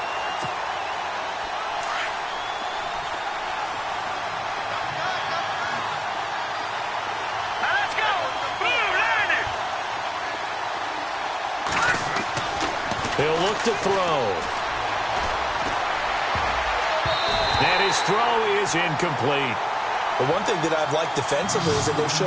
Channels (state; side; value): identical; both; correlation 1.00